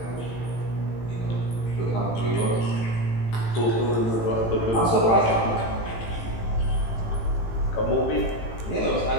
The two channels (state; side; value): late; right; 18 ms